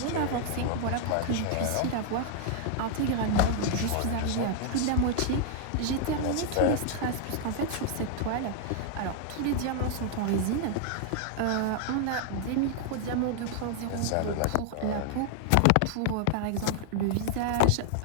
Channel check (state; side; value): different; both; correlation 0.00